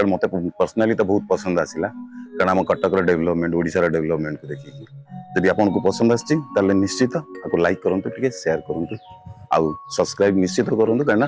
मत पर्सनाली तो बहुत पसंद आसला कारण आम कटक डेवलपमेंट ओडिशा डेवलपमेंट को देखिए जदि आपन को पसंद आछि ताले निश्चित आपको लाइक करंतु टिके शेयर करंतु आउ सब्सक्राइब निश्चित करंतु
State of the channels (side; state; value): both; identical; correlation 1.00